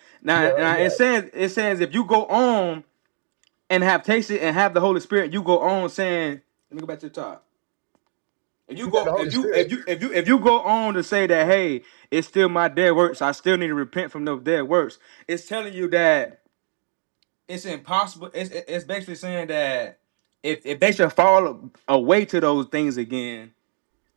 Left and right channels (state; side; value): silent; left; digital silence